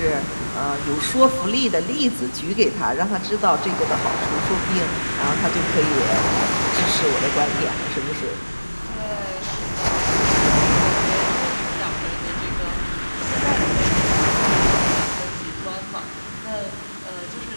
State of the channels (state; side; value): inverted; both; correlation -1.00